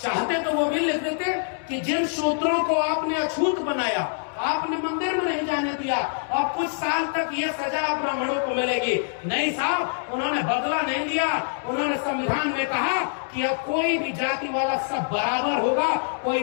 चाहते तो वो भी लिख देते कि जिन शूद्रों को आपने अछूत बनाया, आपने मंदिर में नहीं जाने दिया और कुछ साल तक ये सजा ब्राह्मणों को मिलेगी। नहीं साहब, उन्होंने बदला नहीं लिया। उन्होंने संविधान में कहा कि अब कोई भी जाति वाला सब बराबर होगा,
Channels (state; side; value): silent; right; 62 dB below the other